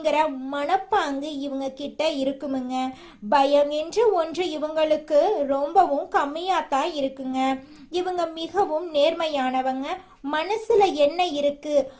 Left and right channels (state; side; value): identical; both; correlation 1.00